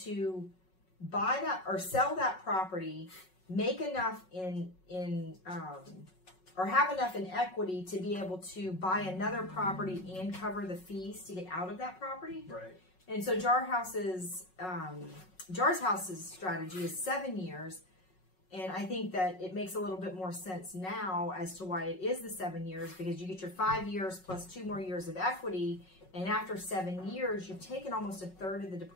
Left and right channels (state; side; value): late; right; 5.4 ms